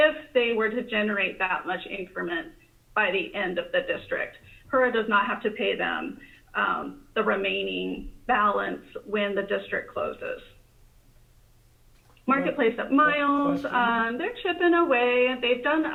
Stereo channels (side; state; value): both; identical; correlation 1.00